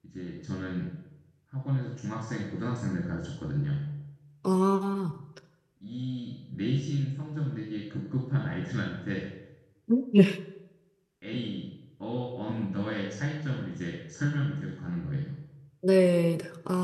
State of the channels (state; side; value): identical; both; correlation 1.00